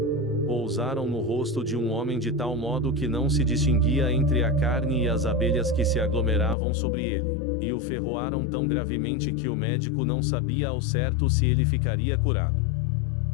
Pousaram no rosto de um homem de tal modo que não se distinguia entre a carne e as abelhas que se aglomeravam sobre ele, e o ferroaram tão gravemente que o médico não sabia ao certo se ele ficaria curado.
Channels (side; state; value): right; drops out; at 6.6 s